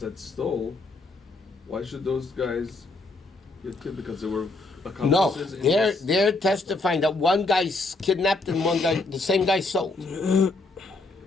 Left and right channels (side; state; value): right; quieter; 3.2 dB